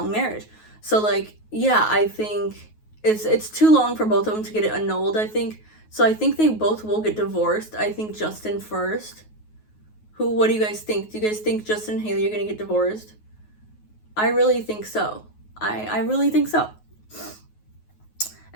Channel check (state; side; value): late; right; 9.4 ms